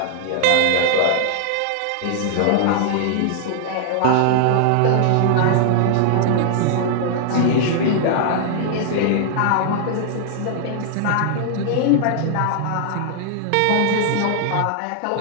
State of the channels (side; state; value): both; different; correlation -0.01